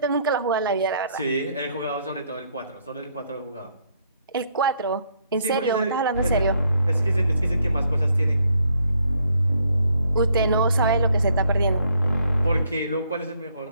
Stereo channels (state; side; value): inverted; both; correlation -0.70